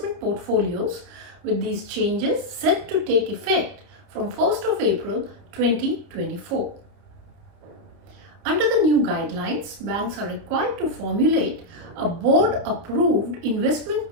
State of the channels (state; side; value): late; left; 30 ms